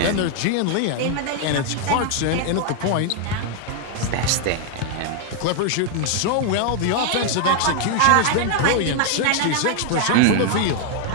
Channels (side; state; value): both; different; correlation 0.00